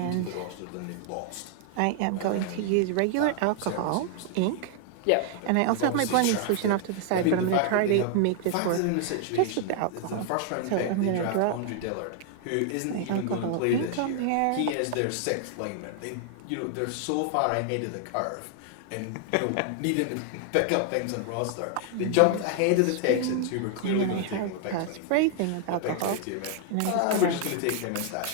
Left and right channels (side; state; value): both; different; correlation 0.00